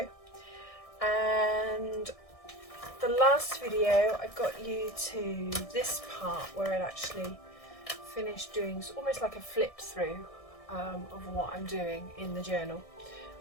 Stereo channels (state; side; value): late; right; 1.6 ms